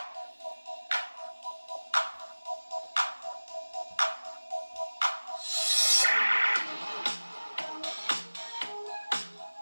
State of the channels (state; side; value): inverted; both; correlation -1.00